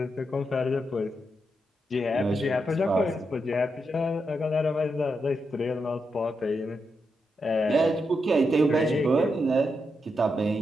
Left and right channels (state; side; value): normal; both; correlation 0.84